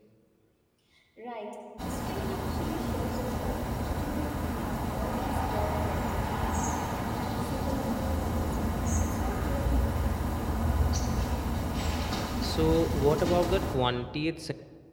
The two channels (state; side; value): identical; both; correlation 1.00